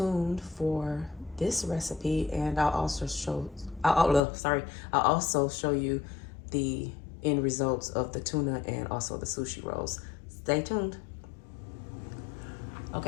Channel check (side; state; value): right; drops out; at 4.2 s